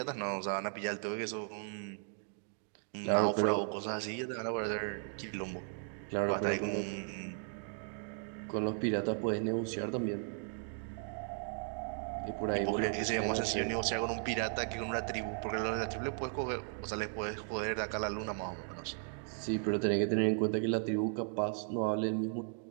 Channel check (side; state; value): left; silent; 54 dB below the other